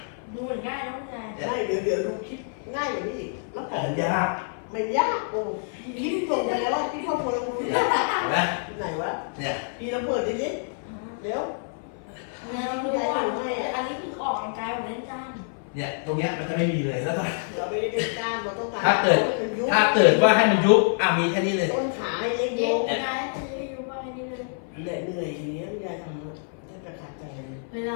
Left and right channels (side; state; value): right; silent; 57 dB below the other